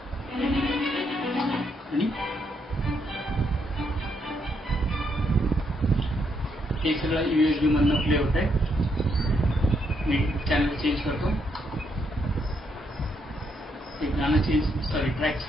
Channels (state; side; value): normal; both; correlation 0.76